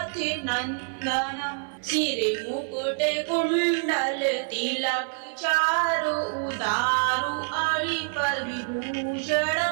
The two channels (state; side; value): silent; left; 61 dB below the other